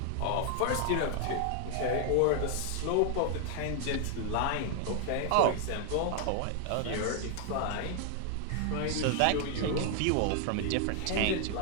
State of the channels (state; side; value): different; both; correlation 0.00